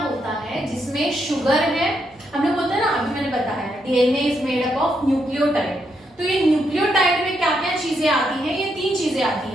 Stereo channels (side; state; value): both; normal; correlation 0.79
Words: है? जिसमें शुगर है, हम लोग बोलते हैं ना, अभी मैंने बताया DNA is made up of nucleotide. तो ये न्यूक्लियोटाइड में क्या क्या चीजें आती हैं? ये 3 चीजें आती